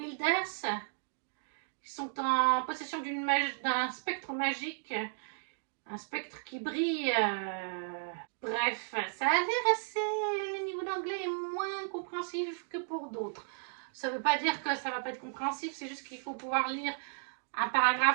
qui sont en possession d'un spectre magique, un spectre qui brille. Bref, ça a l'air assez... Le niveau d'anglais est moins compréhensif que pour d'autres. Ça ne veut pas dire que ça ne va pas être compréhensif, c'est juste qu'il faut pouvoir lire un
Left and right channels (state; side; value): silent; left; digital silence